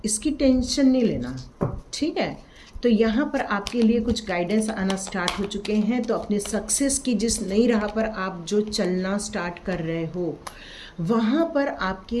इसकी टेंशन नहीं लेना, ठीक है। तो यहाँ पर आपके लिए कुछ गाइडेंस आना स्टार्ट हो चुके हैं। तो अपने सक्सेस की जिस नई राह पर आप जो चलना स्टार्ट कर रहे हो, वहाँ पर आपके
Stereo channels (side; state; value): both; identical; correlation 1.00